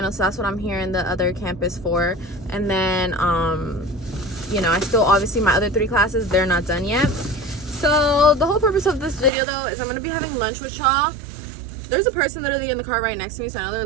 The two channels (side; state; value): left; drops out; at 9.3 s